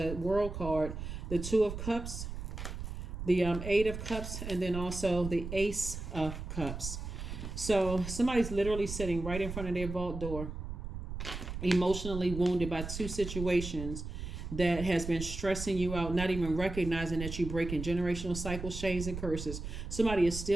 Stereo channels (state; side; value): noise; right; rumble, 7 dB below the sound